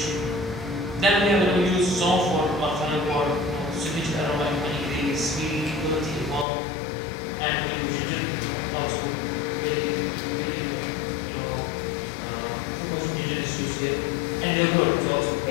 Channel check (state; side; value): drops out; right; at 6.5 s